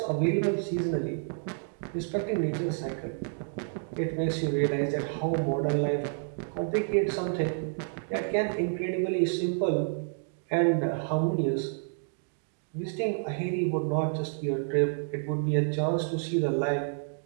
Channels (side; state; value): left; silent; digital silence